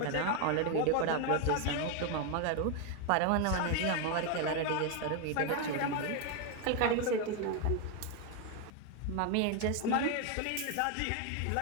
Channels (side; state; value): both; different; correlation 0.01